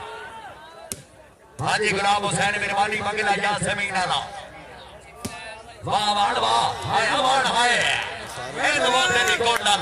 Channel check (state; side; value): identical; both; correlation 1.00